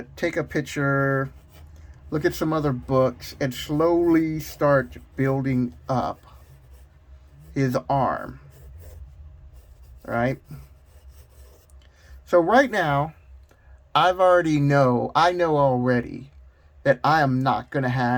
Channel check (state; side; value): identical; both; correlation 1.00